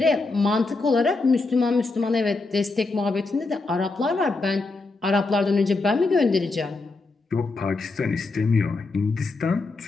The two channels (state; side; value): quieter; right; 3.5 dB